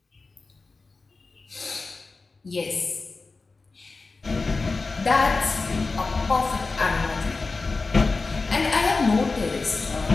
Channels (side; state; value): right; quieter; 3.9 dB